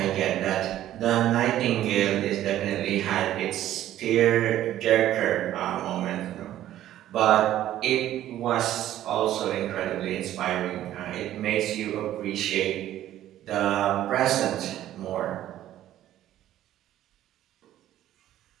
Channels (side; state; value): left; quieter; 12.8 dB